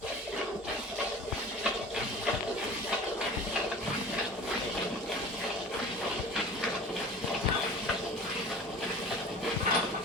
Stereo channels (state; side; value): normal; both; correlation 0.40